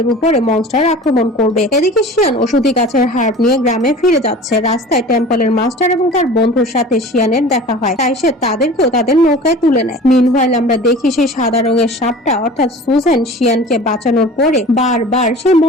উপরে মনস্টার আক্রমণ করবে। এদিকে শিয়ান ওষুধি গাছের হাড় নিয়ে গ্রামে ফিরে যাচ্ছে। রাস্তায় টেম্পলের মাস্টার এবং তার বন্ধুর সাথে শিয়ানের দেখা হয়, তাই সে তাদেরকেও তাদের নৌকায় তুলে নেয়। মিনওয়াইল আমরা দেখি সেই সাদা রঙের সাপটা অর্থাৎ সুজেন শিয়ানকে বাঁচানোর পরে বারবার সেই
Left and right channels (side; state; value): both; normal; correlation 0.40